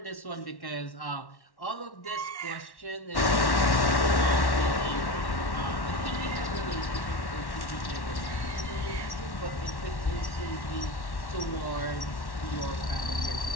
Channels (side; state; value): right; late; 1.1 ms